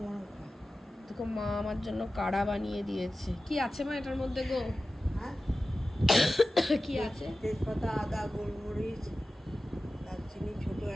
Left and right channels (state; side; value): normal; both; correlation 0.95